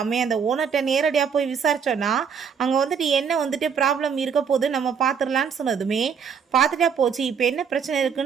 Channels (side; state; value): left; quieter; 6.8 dB